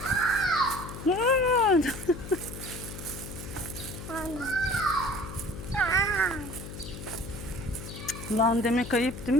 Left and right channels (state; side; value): noise; left; hum, 10 dB below the sound